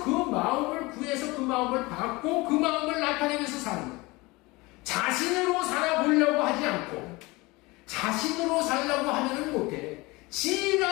그 마음을 구해서 그 마음을 받고 그 마음을 나타내면서 사는 거예요. 자신으로 살아보려고 하지 않고, 자신으로 살려고 하면은 못해.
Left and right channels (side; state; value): right; quieter; 23.1 dB